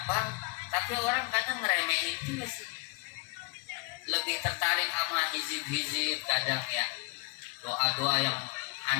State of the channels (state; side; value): quieter; right; 28.1 dB